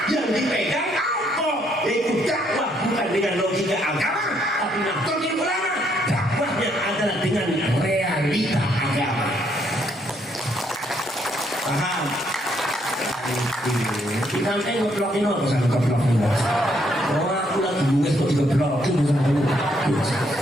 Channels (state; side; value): normal; both; correlation 0.71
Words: yang dipegang apa? Yaitu dakwah bukan dengan logika agama, tapi Nahdlatul Ulama dakwahnya adalah dengan realita agama. Paham? Kita ngeplokin apa sama ngeplokin? Oh aku lagi nulis kok digeplokin sama lu.